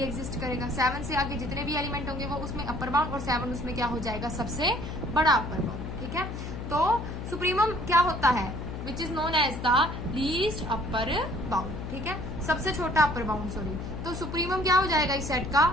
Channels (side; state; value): left; noise; hum, 7 dB below the sound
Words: एग्जिस्ट करेगा। 7 से आगे जितने भी एलिमेंट होंगे वो उसमें अपर बाउंड, और 7 उसमें क्या हो जाएगा, सबसे बड़ा अपर बाउंड, ठीक है। तो सुप्रीमम क्या होता है, which is known as the least upper bound, ठीक है, सबसे छोटा अपर बाउंड, सॉरी। तो सुप्रीमम क्या हो जाएगा इस सेट का,